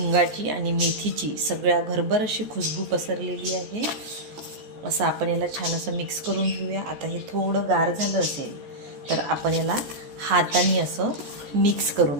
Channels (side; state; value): left; late; 14 ms